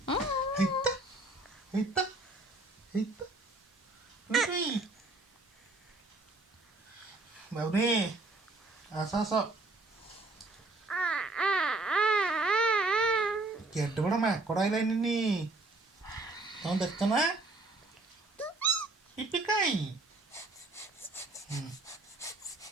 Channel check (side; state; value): left; quieter; 3.0 dB